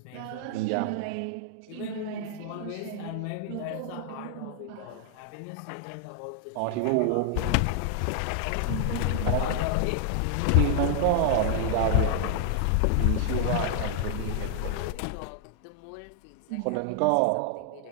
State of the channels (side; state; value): both; different; correlation 0.00